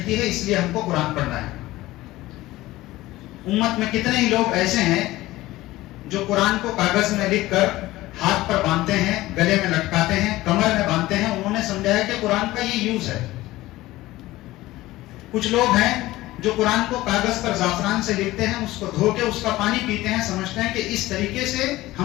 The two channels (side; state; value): right; quieter; 17.5 dB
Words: ہے، اس لیے ہم کو قرآن پڑھنا ہے. امت میں کتنے ہی لوگ ایسے ہیں جو قرآن کو کاغذ میں لکھ کر ہاتھ پر باندھتے ہیں، گلے میں لٹکاتے ہیں، کمر میں باندھتے ہیں. انہوں نے سمجھا ہے کہ قرآن کا یہ یوز ہے. کچھ لوگ ہیں جو قرآن کو کاغذ پر زعفران سے لکھتے ہیں، اس کو دھو کے اس کا پانی پیتے ہیں، سمجھتے ہیں کہ اس طریقے سے